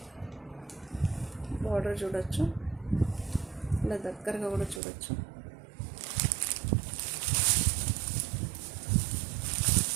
బార్డర్ చూడొచ్చు, ఇలా దగ్గరగా కూడా చూడొచ్చు.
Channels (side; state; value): left; drops out; at 4.8 s